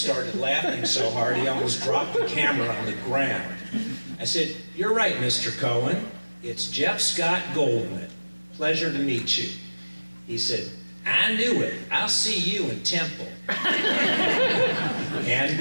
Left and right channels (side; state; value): both; inverted; correlation -1.00